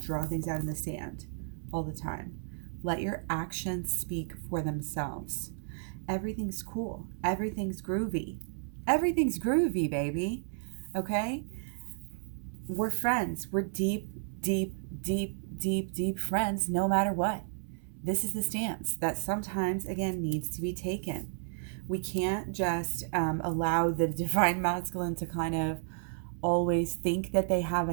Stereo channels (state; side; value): silent; left; digital silence